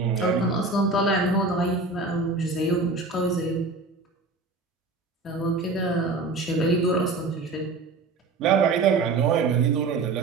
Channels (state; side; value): quieter; left; 3.7 dB